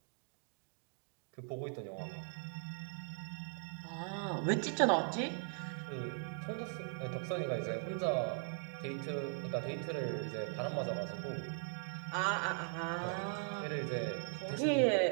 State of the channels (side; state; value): left; silent; 51 dB below the other